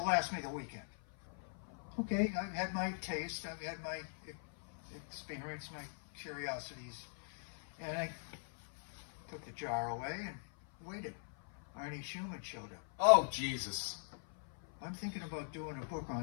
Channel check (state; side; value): silent; right; 51 dB below the other